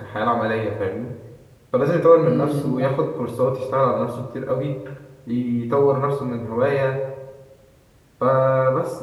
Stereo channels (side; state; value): both; identical; correlation 1.00